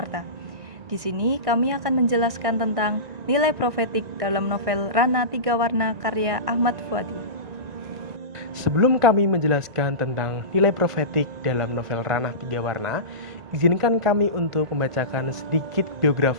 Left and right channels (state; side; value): late; left; 1.5 ms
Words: Di sini kami akan menjelaskan tentang nilai profetik dalam novel Ranah Tiga Warna karya Ahmad Fuadi. Sebelum kami menjelaskan tentang nilai profetik dalam novel Ranah Tiga Warna, izinkan kami untuk membacakan sedikit